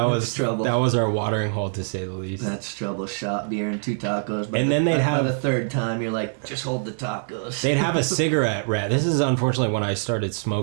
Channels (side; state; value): left; silent; digital silence